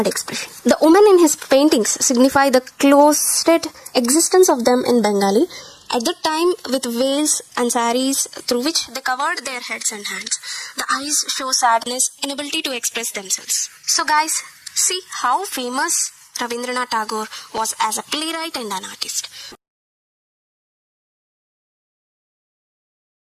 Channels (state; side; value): identical; both; correlation 1.00